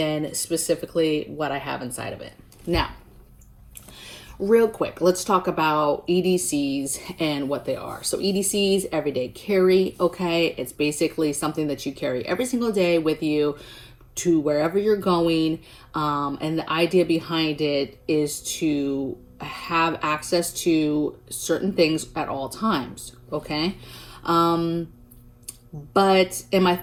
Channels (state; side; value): identical; both; correlation 1.00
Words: specifically what I have inside of it. Now, real quick, let's talk about EDCs and what they are. So EDCs, everyday carry, okay? It's basically something that you carry every single day with you to wherever you're going. And the idea behind it is to have access to certain things at all times, okay? But my